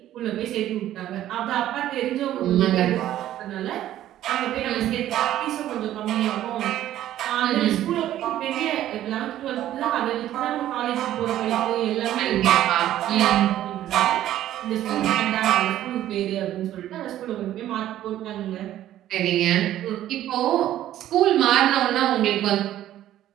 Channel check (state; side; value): quieter; left; 12.8 dB